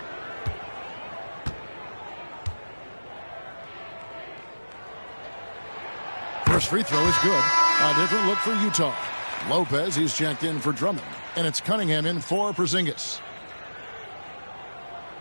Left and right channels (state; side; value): inverted; both; correlation -1.00